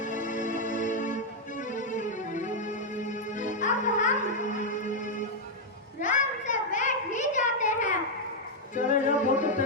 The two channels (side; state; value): both; normal; correlation -0.02